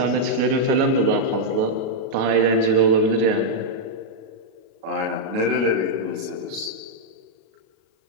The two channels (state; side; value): late; left; 37 ms